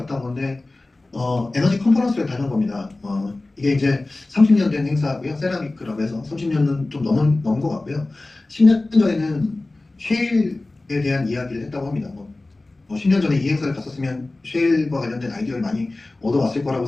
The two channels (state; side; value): quieter; right; 3.0 dB